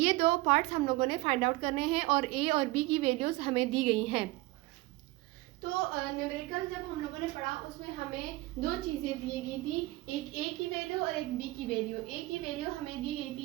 दो पार्ट्स हम लोगों ने फाइंड आउट करने हैं और ए और बी की वैल्यूज हमें दी गई हैं। तो न्यूमेरिकल जब हम लोगों ने पढ़ा उसमें हमें दो चीज़ें दी गई थी, एक ए की वैल्यू और एक बी की वैल्यू। ए की वैल्यू हमें दी गई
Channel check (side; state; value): left; quieter; 20.3 dB